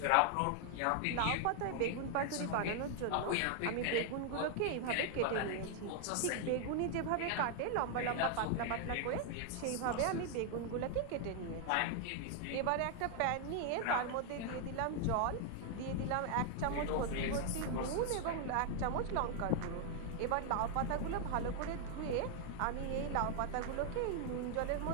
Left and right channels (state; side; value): different; both; correlation 0.00